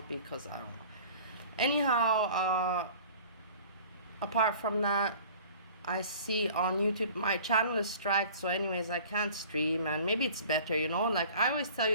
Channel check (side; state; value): both; inverted; correlation -0.46